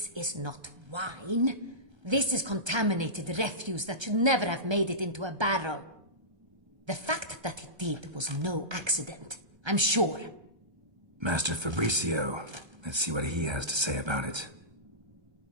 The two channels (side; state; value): left; late; 1.3 ms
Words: is not wine. This is contaminated refuse that should never have made it into a barrel. The fact that it did was no accident, I'm sure. Master Fabricio. Let's see what he has to say about it.